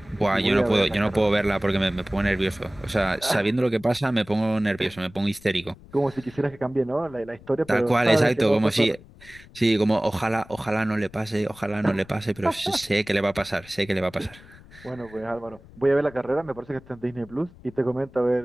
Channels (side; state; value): left; noise; rumble, 22 dB below the sound